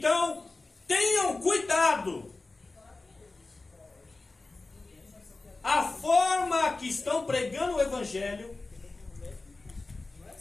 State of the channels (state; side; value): quieter; right; 3.4 dB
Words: tenham cuidado. A forma que estão pregando o evangelho,